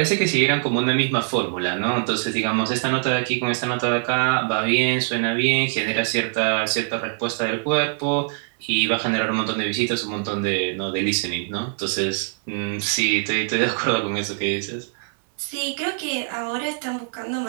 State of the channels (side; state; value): left; silent; 57 dB below the other